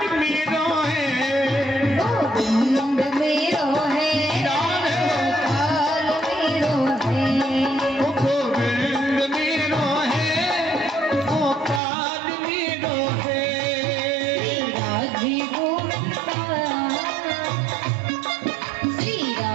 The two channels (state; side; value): drops out; left; at 11.8 s